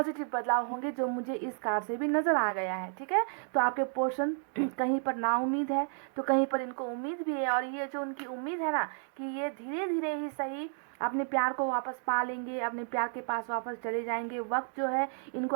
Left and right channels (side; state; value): left; silent; 56 dB below the other